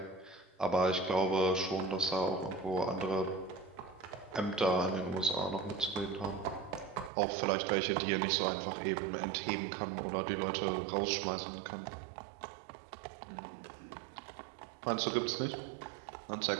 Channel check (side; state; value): left; drops out; at 7.1 s